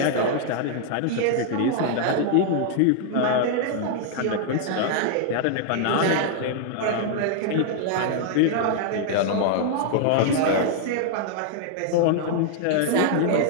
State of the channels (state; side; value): different; both; correlation 0.00